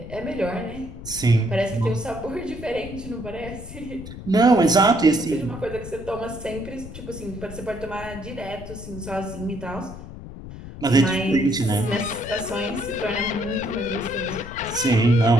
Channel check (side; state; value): left; noise; rumble, 12 dB below the sound